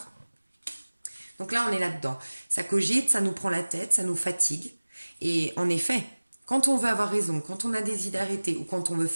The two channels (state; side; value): inverted; both; correlation -1.00